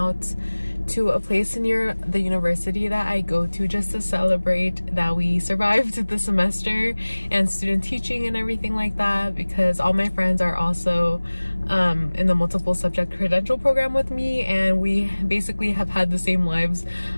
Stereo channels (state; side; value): inverted; both; correlation -1.00